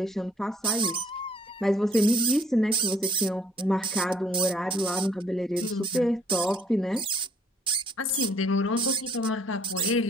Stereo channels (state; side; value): normal; both; correlation 0.62